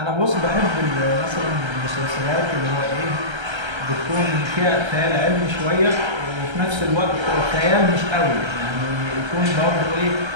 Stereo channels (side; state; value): left; late; 1.3 ms